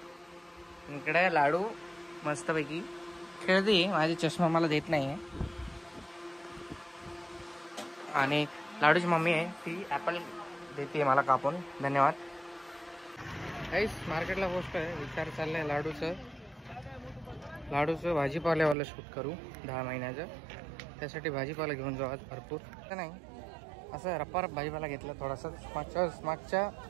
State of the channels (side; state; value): left; drops out; at 18.8 s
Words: इकडे लाडू मस्तपैकी खेळते. माझी चष्मा मला देत नाही आहे. आणि लाडूची मम्मी आहे ती ॲपल देते मला कापून. धन्यवाद. गाईस मार्केटला पोस्ट आहे. विचार चाललाय लाडूचं भाजीपाल्यावाला शूट करू 10 महिन्याचं. त्यासाठी भाजीपाला घेऊन जाऊ आज भरपूर. नाही असं रप्पा भाजीपाला घेतला थोडासा. मागच्या